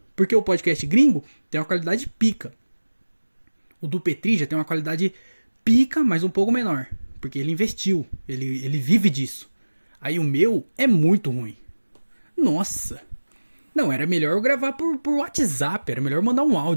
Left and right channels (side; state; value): both; inverted; correlation -1.00